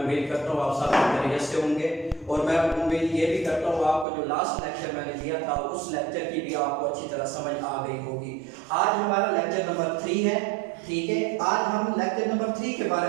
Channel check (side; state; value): left; drops out; at 4.0 s